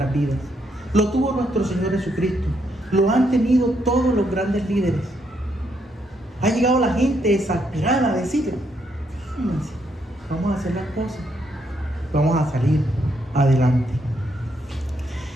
vidas. Lo tuvo nuestro Señor Jesucristo. Lo han tenido todos los grandes líderes. Ha llegado la gente exasperada a decirle, fíjense, vamos a hacer las cosas, vamos a salir adelante.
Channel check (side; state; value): both; normal; correlation 0.75